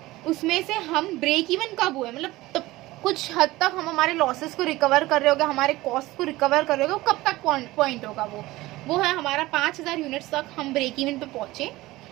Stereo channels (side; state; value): left; quieter; 18.6 dB